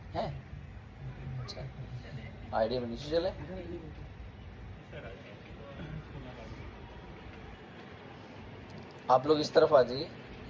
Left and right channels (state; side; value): identical; both; correlation 1.00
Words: हैं. अच्छा, आइडिया में नीचे चले. आप लोग इस तरफ आ जाइए,